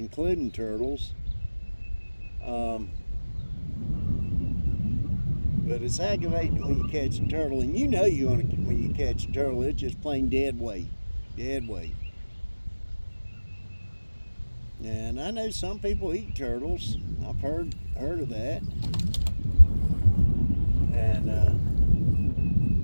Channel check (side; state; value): both; inverted; correlation -1.00